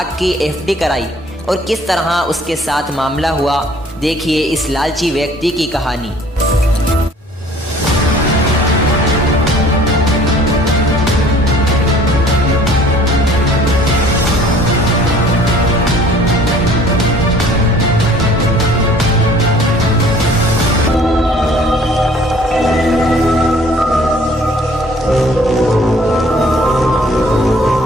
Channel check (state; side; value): normal; both; correlation 0.54